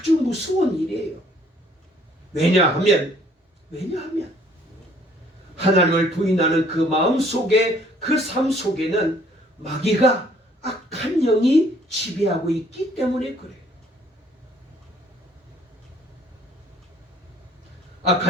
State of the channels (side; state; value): both; normal; correlation 0.61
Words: 무서운 일이에요. 왜냐하면 하나님을 부인하는 그 마음 속에, 그 삶 속에는 마귀가, 악한 영이 지배하고 있기 때문에 그래요.